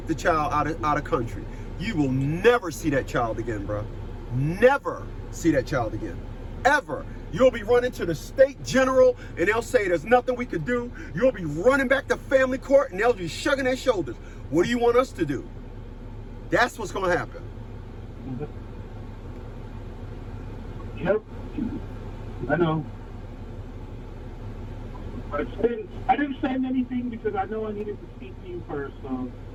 the child out of country. You will never see that child again, bro. Never see that child again. Ever. You'll be running to the state general and they'll say there's nothing we could do. You'll be running back to family court and they'll be shrugging their shoulders. What do you want us to do? That's what's going to happen. Yep. I know. But I didn't send anything because I know I needed to speak to you first. So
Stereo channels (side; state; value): both; identical; correlation 1.00